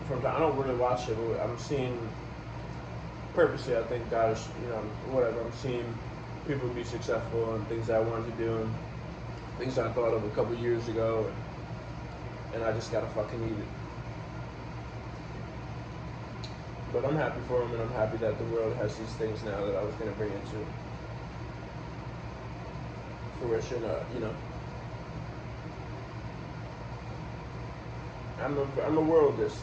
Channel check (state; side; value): identical; both; correlation 1.00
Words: from time. I don't really watch it, but I'm seeing purposely. I think God is, you know, whatever. I'm seeing people be successful and things I wanted to do and things I thought of a couple years ago, and I just gotta fucking eat it. But I'm happy for them, and I'm happy that the world has these things now that I was gonna bring into fruition. You know, I'm a worldist,